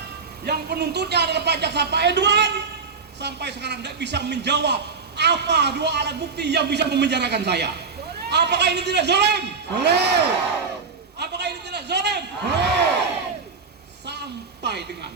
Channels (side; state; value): left; quieter; 5.0 dB